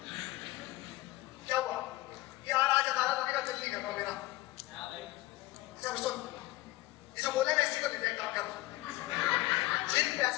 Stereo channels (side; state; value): right; quieter; 18.5 dB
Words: क्या हुआ? यार आज अदालत आने का दिल नहीं करता मेरा। चल सुन, ये जो बोले मैं इसी को ले जाए काम कर। जिन